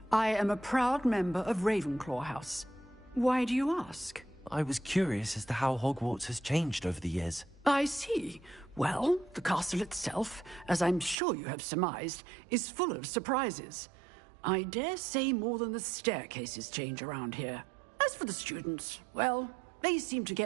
I am a proud member of Ravenclaw House. Why do you ask? I was curious as to how Hogwarts has changed over the years. I see. Well, the castle itself, as I'm sure you have surmised, is full of surprises. I dare say more than the staircases change around here. As for the students, well, they seem to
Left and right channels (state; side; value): drops out; left; at 11.2 s